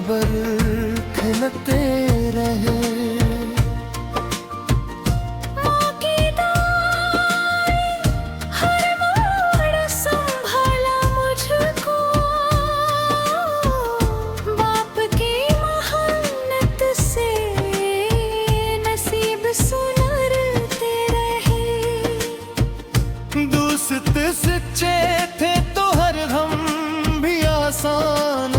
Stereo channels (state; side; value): identical; both; correlation 1.00